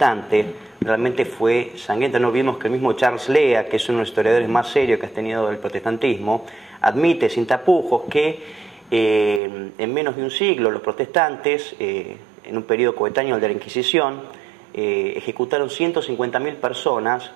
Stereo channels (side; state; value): left; drops out; at 9.4 s